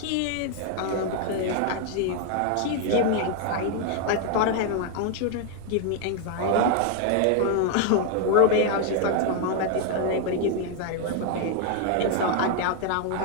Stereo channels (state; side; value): different; both; correlation 0.00